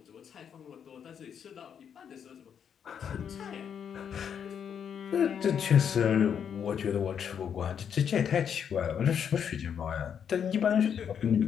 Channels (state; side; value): quieter; right; 7.9 dB